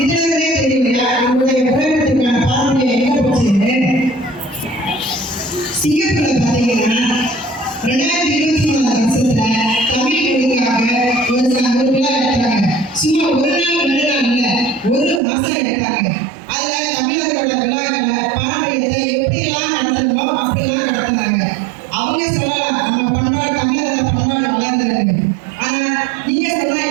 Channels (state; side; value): drops out; left; at 15.2 s